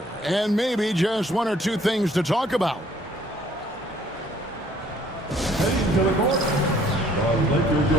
and maybe just one or two things to talk about. Heading to the court, the Lakers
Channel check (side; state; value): both; normal; correlation 0.60